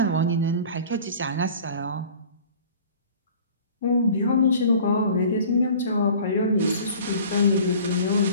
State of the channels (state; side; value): inverted; both; correlation -0.45